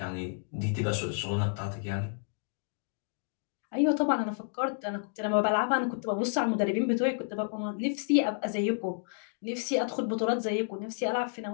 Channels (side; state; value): right; silent; digital silence